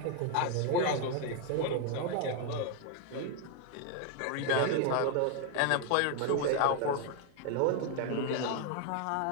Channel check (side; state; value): both; different; correlation 0.00